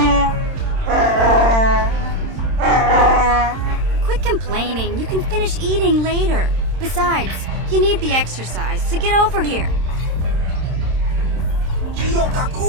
Quit complaining. You can finish eating later. Besides, you need the exercise, so get over here.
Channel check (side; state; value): left; late; 26 ms